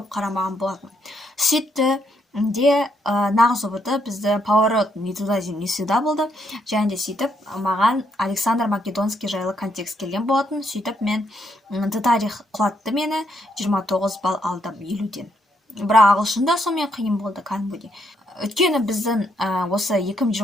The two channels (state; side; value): normal; both; correlation 0.75